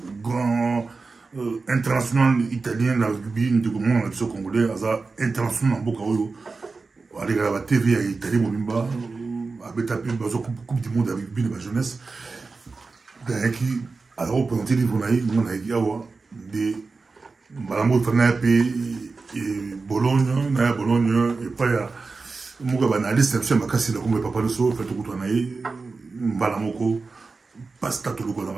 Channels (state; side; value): quieter; left; 4.1 dB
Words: grand international italien, la rugby, de congolais, international en Bokaoyo, avec la TV à Italie, avec la Coupe du monde avec rugby de la jeunesse. Alors, on peut entendre des Malambo Fanape et Bologne, et pas ya Muga analyste, c'est ma casse, comme papa le so, fait tout le temps, Malamoko, pasta tout le temps dans